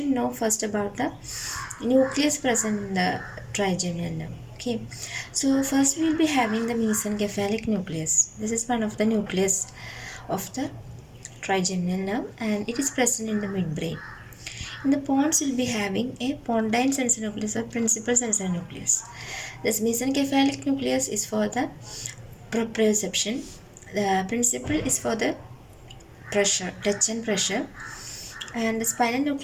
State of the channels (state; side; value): identical; both; correlation 1.00